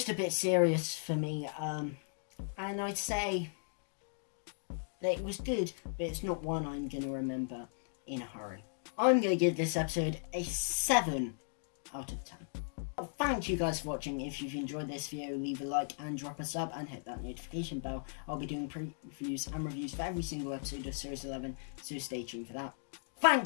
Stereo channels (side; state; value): right; silent; digital silence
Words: a bit serious for me. And I'd say that it was good, but it's not one I'm going to remember in a hurry. I'm going to give this episode a 7 out of 10. Well, thank you guys for watching. If you've enjoyed this video, leave a like and drop a sub and hit that notification bell. I'll be doing previews and reviews for every single episode of Series 11, so stay tuned for that.